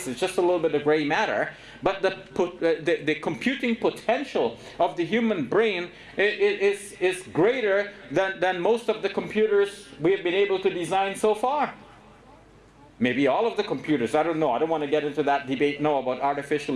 It's just a little bit of gray matter. But the computing potential of the human brain is greater than most of the computers we have been able to design so far. Maybe all of the computers. I don't know. I don't want to get into that debate now about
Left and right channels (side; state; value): both; identical; correlation 1.00